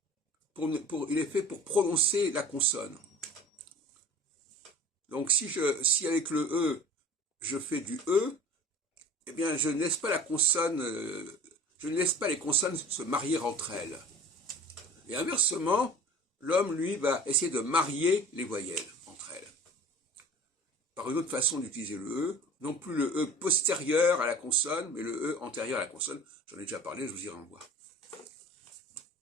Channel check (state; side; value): normal; both; correlation 0.42